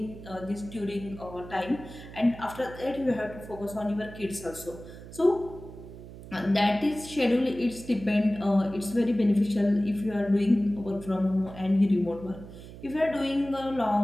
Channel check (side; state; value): right; noise; hum, 15 dB below the sound